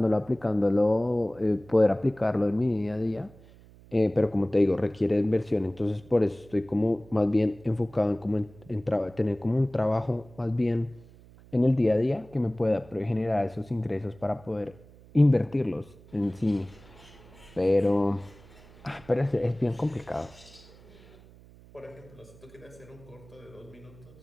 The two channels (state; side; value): noise; right; hum, 23 dB below the sound